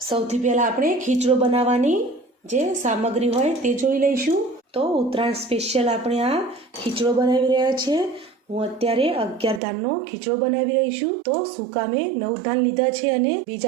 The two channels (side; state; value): left; drops out; at 9.6 s